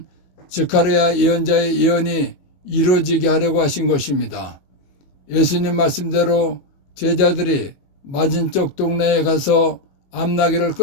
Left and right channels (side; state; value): right; late; 21 ms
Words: 스가랴 예언자의 예언이 이루어지게 하려고 하신 것입니다. 예수님 말씀대로 제자들이 맞은쪽 동네에 가서 암나귀를